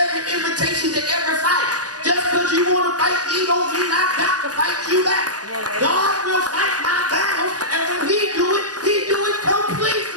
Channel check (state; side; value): late; left; 0.68 ms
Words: invitation to every fight. Just because you want to fight me don't mean I got to fight you back. God will fight my battles, and when he do it